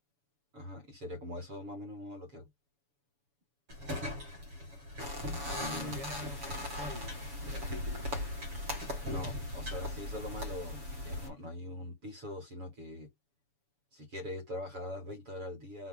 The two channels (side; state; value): left; late; 7.0 ms